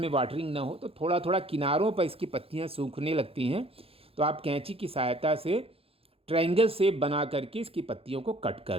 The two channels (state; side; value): late; left; 0.28 ms